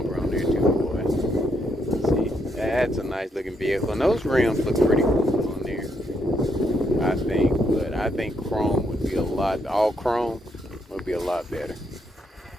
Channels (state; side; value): normal; both; correlation 0.76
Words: on there too, boy. See, That's a nice looking vehicle. And those rims look pretty cool on there, I think. But I think chrome would be all chrome would be a lot better.